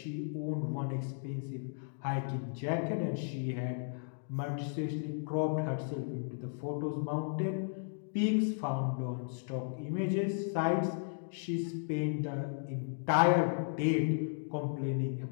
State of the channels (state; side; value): silent; right; digital silence